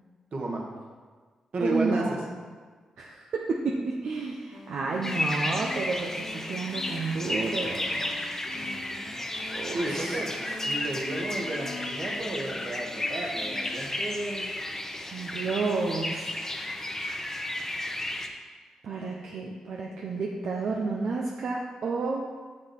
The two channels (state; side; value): normal; both; correlation 0.83